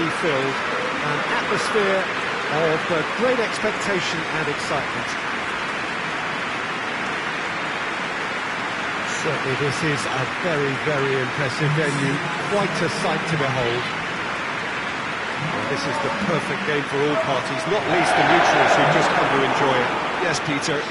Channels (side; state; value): both; identical; correlation 1.00